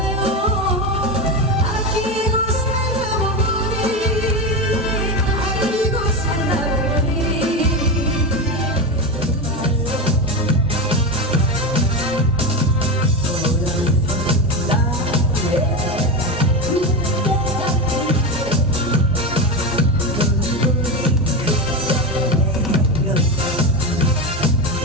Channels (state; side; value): normal; both; correlation 0.17